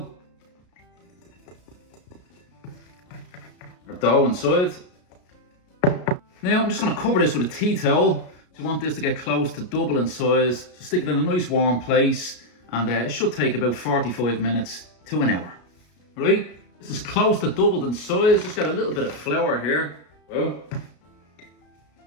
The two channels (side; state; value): right; late; 33 ms